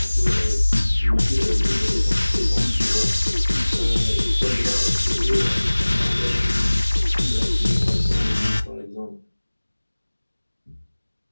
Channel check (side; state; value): both; inverted; correlation -1.00